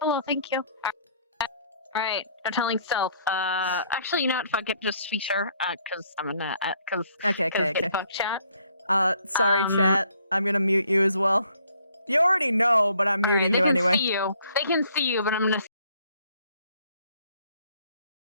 thank you. Alright, I'm telling Stealth. Actually, you know what? Fuck it, just speak her. Cause I'm gonna, Okay. Fuck chat. Sorry, chat. I'm gonna mute you as well. You already know, but I'm muting you anyway. They can see you, but I'm gonna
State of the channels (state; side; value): inverted; both; correlation -0.64